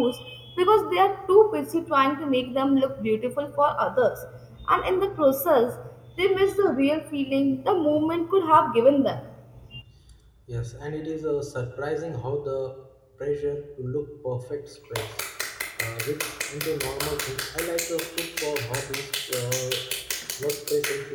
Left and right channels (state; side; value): identical; both; correlation 1.00